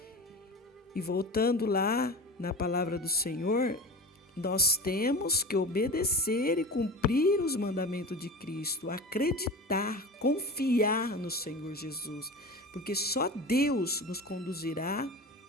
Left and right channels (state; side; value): normal; both; correlation 0.31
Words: E voltando lá na palavra do Senhor, nós temos que obedecer e cumprir os mandamentos de Cristo, acreditar, confiar no Senhor Jesus, porque só Deus nos conduzirá